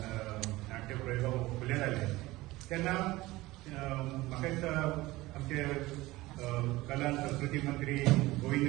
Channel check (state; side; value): quieter; left; 19.1 dB